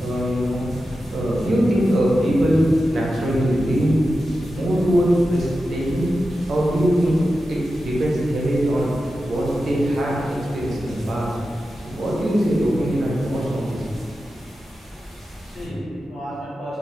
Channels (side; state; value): both; normal; correlation 0.91